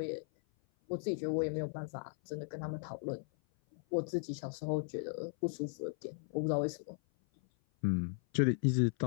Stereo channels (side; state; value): right; silent; 53 dB below the other